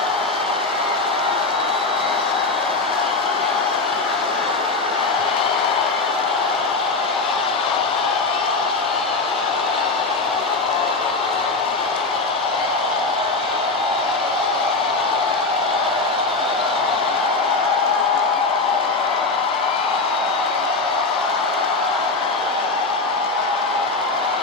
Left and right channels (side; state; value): right; quieter; 3.6 dB